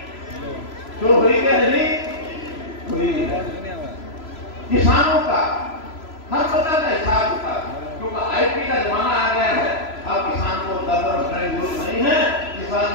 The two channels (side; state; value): right; late; 3.0 ms